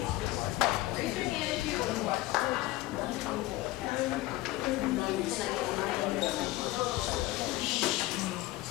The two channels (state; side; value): quieter; right; 17.7 dB